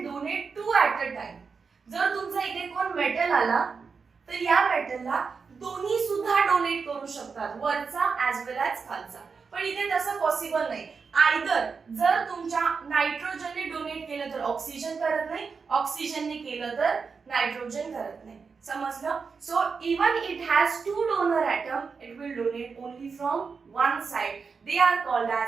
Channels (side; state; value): left; quieter; 5.2 dB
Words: donate 2 at a time. जर तुमचा इथे कोण मेटल आला तर या मेटलला दोन्ही सुद्धा डोनेट करू शकतात, वरचा ॲज वेल ॲज खालचा. पण इथे तसं पॉसिबल नाही. आयदर जर तुमच्या नायट्रोजनने डोनेट केलं तर ऑक्सिजन करत नाही, ऑक्सिजनने केलं तर नायट्रोजन करत नाही. समजलं. So even it has 2 donor atom it will donate only from one side. They are called